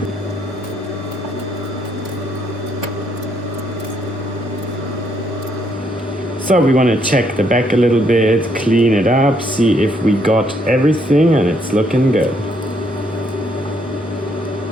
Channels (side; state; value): both; normal; correlation 0.72